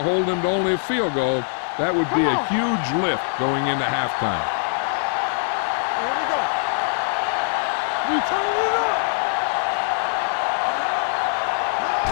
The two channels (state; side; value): silent; right; digital silence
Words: hold him to only a field goal, that would be a huge lift going into halftime. Here we go. You telling me that?